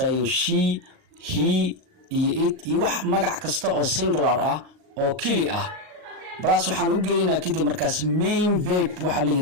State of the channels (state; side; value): late; left; 39 ms